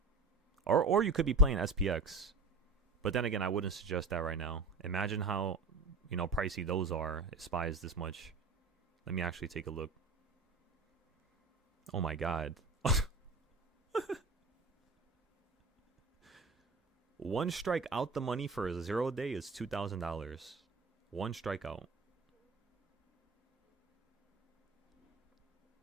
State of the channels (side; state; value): left; quieter; 3.5 dB